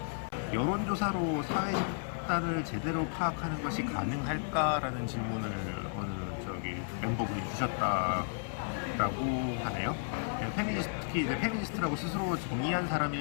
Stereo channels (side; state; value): right; silent; 56 dB below the other